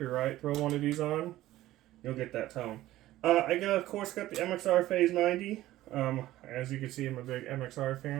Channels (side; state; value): left; quieter; 15.4 dB